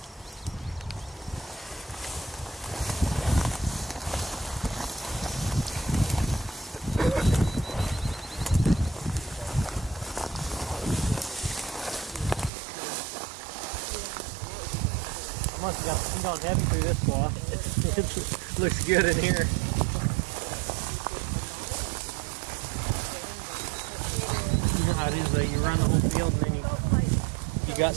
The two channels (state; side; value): drops out; left; at 12.5 s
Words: Must have gone heavy through this block. It looks good in here. You know how it is though, you run the whole field and then you got